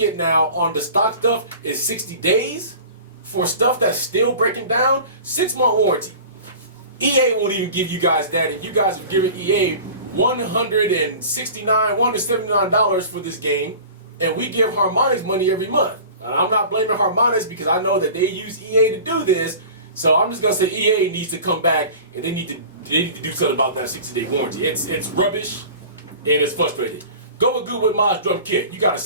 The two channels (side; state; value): both; inverted; correlation -0.39